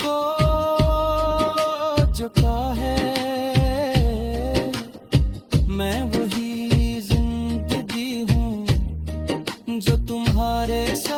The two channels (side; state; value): both; identical; correlation 1.00